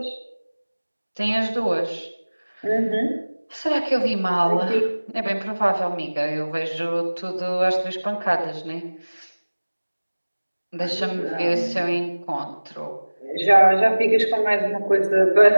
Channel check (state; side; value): inverted; both; correlation -1.00